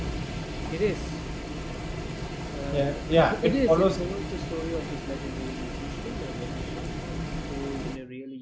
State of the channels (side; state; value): both; identical; correlation 1.00